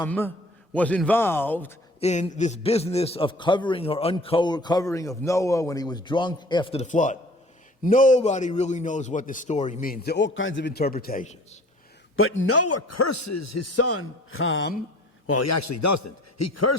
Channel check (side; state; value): both; normal; correlation 0.50